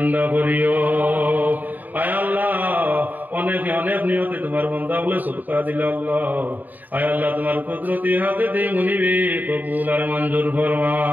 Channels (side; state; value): left; late; 0.084 ms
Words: করিও। আয় আল্লাহ অনেকে অনেক নিয়তে তোমার বন্ধা বলে সদকা দিল আল্লাহ। আয় আল্লাহ তোমার কুদরতি হাতে দিয়ে মুনিবে কবুল আর মঞ্জুর ফরমা